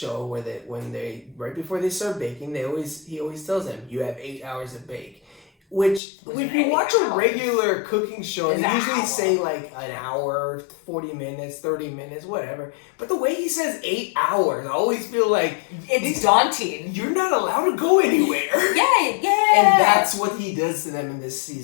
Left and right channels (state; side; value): drops out; right; at 6.0 s